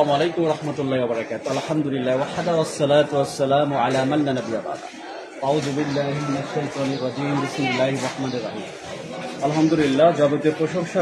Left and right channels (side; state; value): both; identical; correlation 1.00